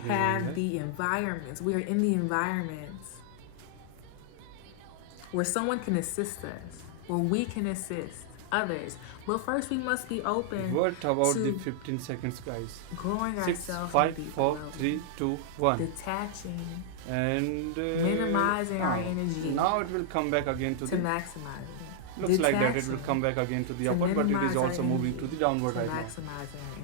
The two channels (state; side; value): different; both; correlation -0.01